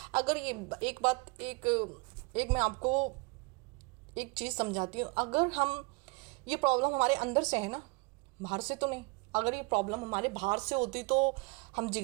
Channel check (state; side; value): quieter; left; 28.3 dB